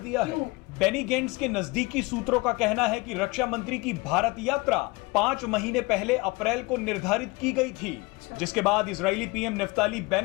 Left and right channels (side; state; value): right; quieter; 24.6 dB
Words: है। बेनी गेंट्स के नजदीकी सूत्रों का कहना है कि रक्षा मंत्री की भारत यात्रा 5 महीने पहले अप्रैल को निर्धारित की गई थी, जिसके बाद इजरायली पीएम नेफ्ताली